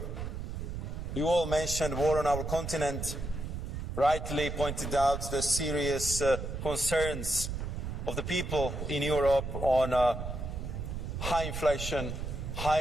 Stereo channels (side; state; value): right; noise; rumble, 5 dB below the sound